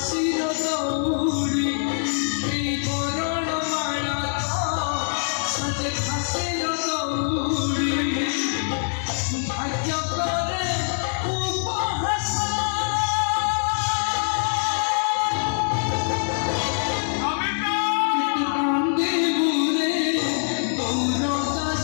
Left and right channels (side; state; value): right; silent; 63 dB below the other